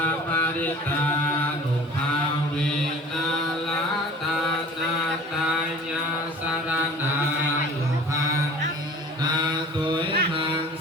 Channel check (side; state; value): both; normal; correlation 0.44